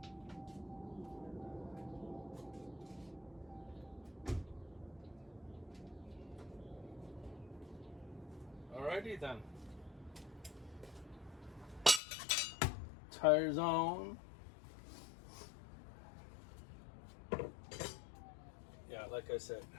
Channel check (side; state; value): right; drops out; at 12.0 s